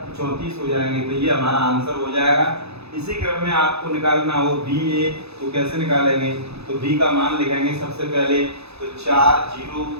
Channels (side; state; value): left; late; 0.79 ms